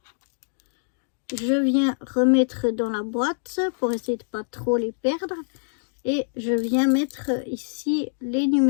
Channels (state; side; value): silent; right; digital silence